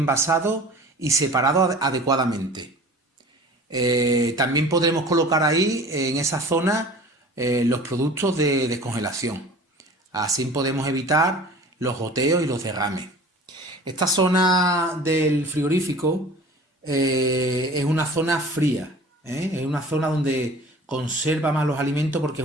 y separado adecuadamente. También podremos colocar ahí, en esa zona, los productos de descongelación. Así podemos evitar los goteos y los derrames. Esta zona del frigorífico es una zona fría, es una zona donde conserva más los alimentos porque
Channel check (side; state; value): both; normal; correlation 0.43